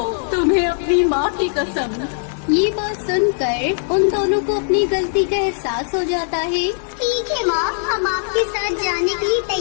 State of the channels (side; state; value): right; silent; digital silence